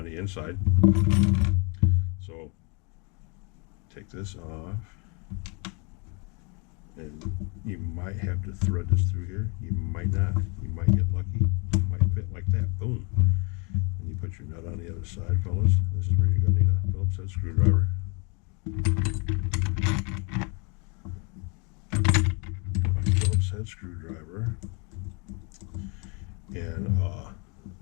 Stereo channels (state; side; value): quieter; right; 32.9 dB